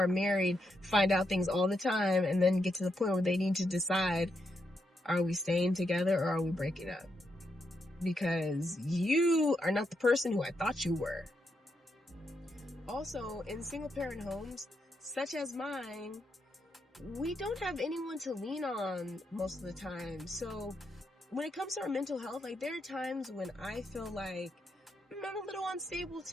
married find out things all the time and then get to the point where they need to decide, are we staying together or are we breaking up? Because you are not the person who I thought you were. Also, in single parent homes, such as mine, we don't have anyone to lean on most of the time. So when it comes to our mental health, like there are times when I feel like I'm a little unstable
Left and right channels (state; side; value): normal; both; correlation 0.82